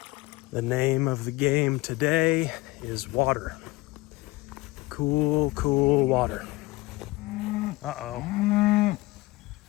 The name of the game today is water. Cool, cool water. Uh-oh.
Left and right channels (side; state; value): right; quieter; 20.7 dB